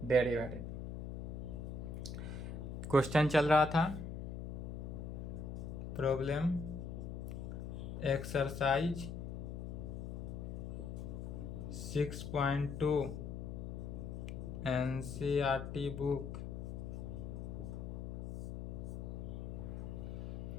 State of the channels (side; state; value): left; noise; hum, 6 dB below the sound